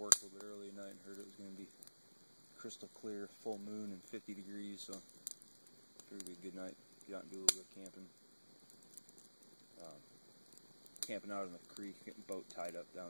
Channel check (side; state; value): both; inverted; correlation -1.00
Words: a little bit early tonight and heard it was going to be crystal clear, full moon, and 50 degrees, so figured it'd be a good night. Get out and do a little bit of camping. Camping out in the creek, getting boat tied up